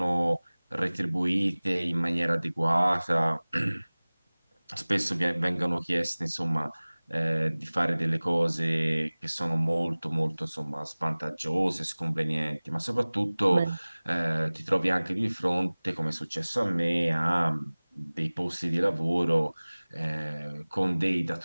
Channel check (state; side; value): inverted; both; correlation -1.00